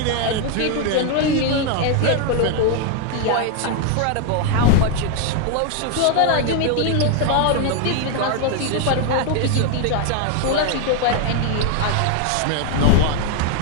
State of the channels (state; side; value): different; both; correlation 0.01